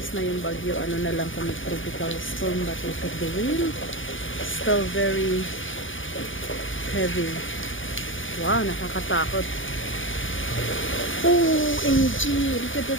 na yung bagyo. Ano na lang kami, tropical storm. But look at the wind. Still very heavy. Wow, nakakatakot. OMG! Look at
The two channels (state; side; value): late; right; 0.57 ms